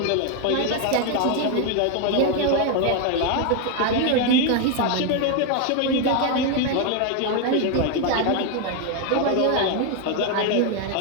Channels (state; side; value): different; both; correlation 0.01